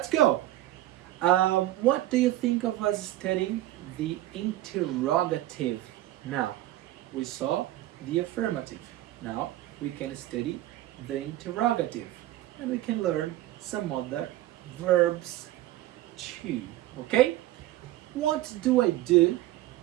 go. What do you think of us studying the interrogative. Now, we saw the affirmative. Now, we can study the interrogative. And we can learn some other verbs too. Okay? What do I do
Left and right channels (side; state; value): left; quieter; 15.3 dB